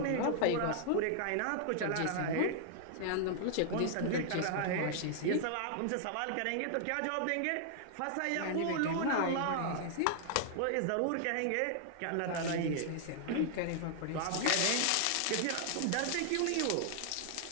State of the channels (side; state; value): both; different; correlation -0.01